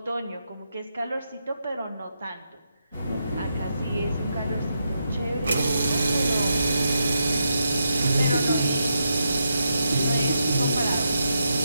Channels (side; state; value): both; inverted; correlation -0.84